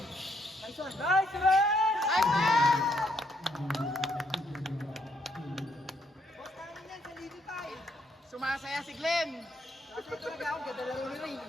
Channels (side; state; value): both; normal; correlation 0.72